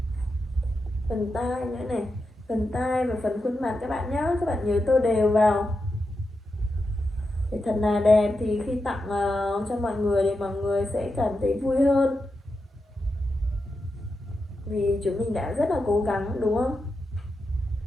phần tai nữa này, phần tai và phần khuôn mặt các bạn nhé. Các bạn nhớ tô đều vào để thật là đẹp, thì khi tặng cho mọi người thì mọi người sẽ cảm thấy vui hơn, vì chúng mình đã rất là cố gắng đúng không?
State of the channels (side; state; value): both; normal; correlation 0.88